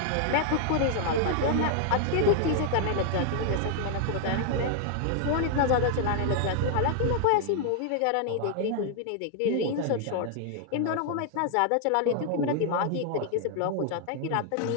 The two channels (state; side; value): different; both; correlation 0.00